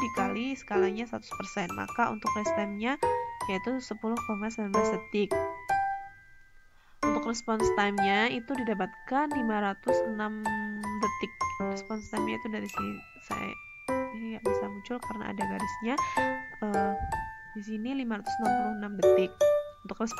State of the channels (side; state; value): both; identical; correlation 1.00